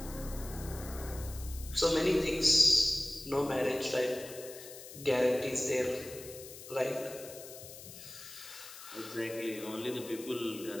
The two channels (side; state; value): left; noise; hiss, 14 dB below the sound